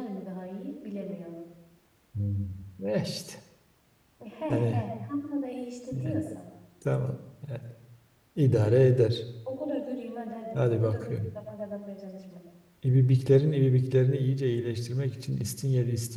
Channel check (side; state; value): both; identical; correlation 1.00